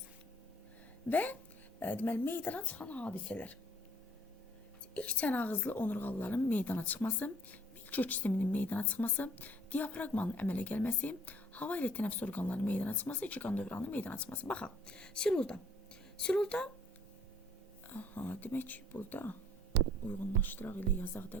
və deməli meydana çıxan hadisələr. İlk çənağızlı onurğalıların meydana çıxması, milkök sisteminin meydana çıxması, diafraqmanın əmələ gəlməsi, hava ilə tənəffüs orqanlarının meydana çıxması, iki qan dövranının meydana çıxması. Baxaq, Silurda, demək ki, burada uyğunlaşdıraq ilə yazaq da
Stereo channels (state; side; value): normal; both; correlation 0.58